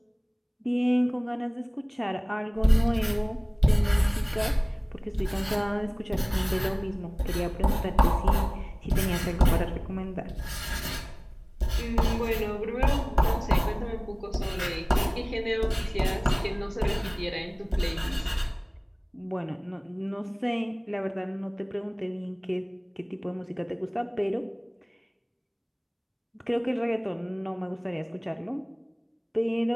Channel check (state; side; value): identical; both; correlation 1.00